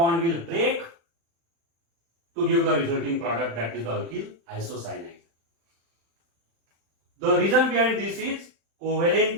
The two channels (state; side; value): late; left; 35 ms